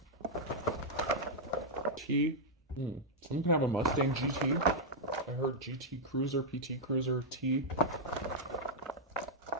T. Someone can have a Mustang GT. I heard GT Cruiser, PT Cruiser, T.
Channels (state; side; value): normal; both; correlation -0.05